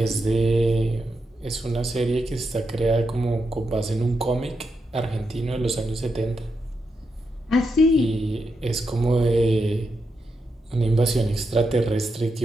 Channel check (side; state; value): both; normal; correlation 0.84